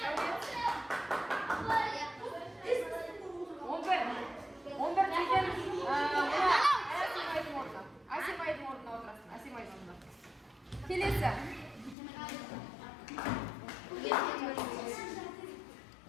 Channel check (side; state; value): right; drops out; at 12.0 s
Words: Асимайдың орнына отырасың. Асимайдың орнына. Келесі.